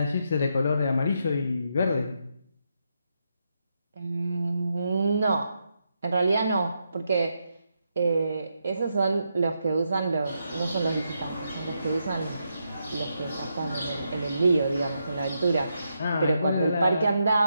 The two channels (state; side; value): inverted; both; correlation -0.82